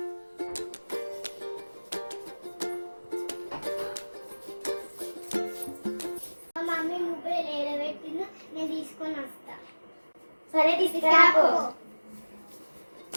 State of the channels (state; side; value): inverted; both; correlation -1.00